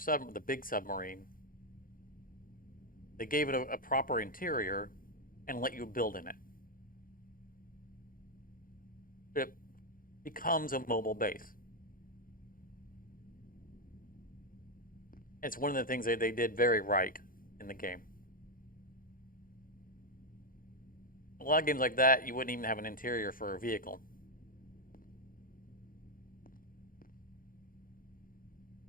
big submarine, they gave it a proper interior and let you build in it. It becomes a mobile base. It's one of the things they did very right in the game. A lot of games like that, you wouldn't even have an interior for a vehicle.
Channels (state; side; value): late; right; 0.41 ms